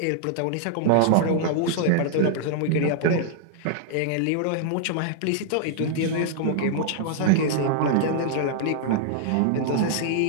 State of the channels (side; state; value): both; different; correlation -0.01